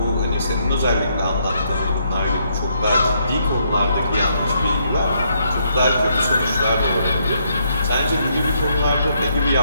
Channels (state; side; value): inverted; both; correlation -0.73